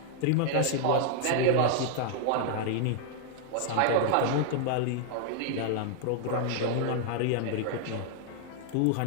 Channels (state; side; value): different; both; correlation 0.00